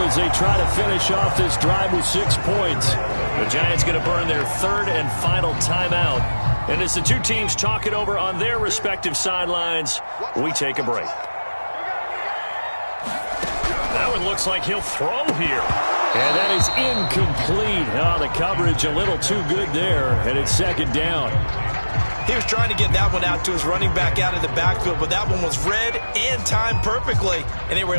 as they try to finish off this drive with 6 points. The Giants going to burn their 3rd and final timeout. And as the 2 teams talk it over on their respective sidelines, we take a break. That one looks like he'll throw here. And that is incomplete. Oh, the coverage a little too good there. And it's 2nd down. He was trying to get that one out to his running back out of the backfield, but that one was read and timed perfectly, and they were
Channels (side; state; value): both; inverted; correlation -1.00